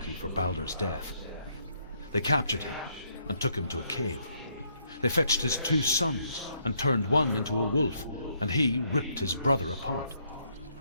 for Baldur's death. They captured him and took him to a cave. They fetched his 2 sons and turned one into a wolf, and he ripped his brother apart.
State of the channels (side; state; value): both; inverted; correlation -0.72